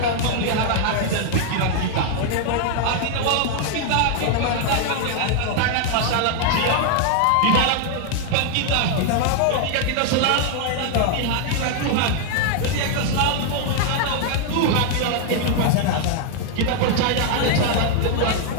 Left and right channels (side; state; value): both; different; correlation 0.00